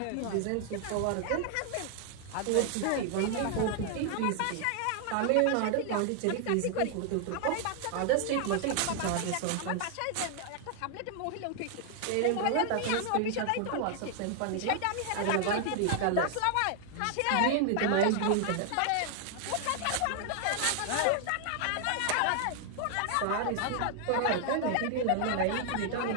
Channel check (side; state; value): both; different; correlation 0.00